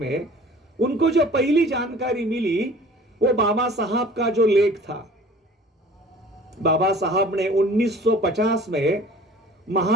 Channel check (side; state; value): both; normal; correlation 0.47